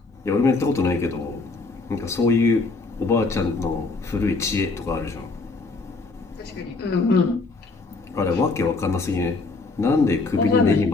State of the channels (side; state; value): right; quieter; 3.7 dB